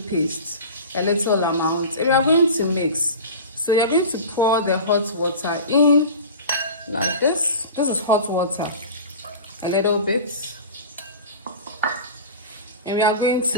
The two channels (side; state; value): both; inverted; correlation -0.33